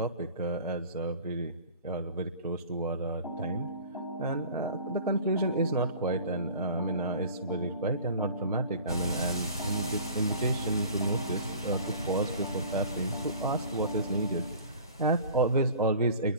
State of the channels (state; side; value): inverted; both; correlation -0.44